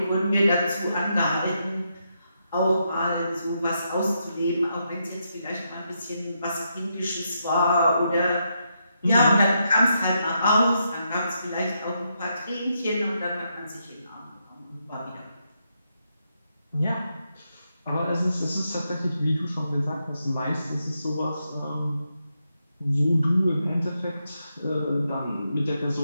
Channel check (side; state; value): both; inverted; correlation -0.81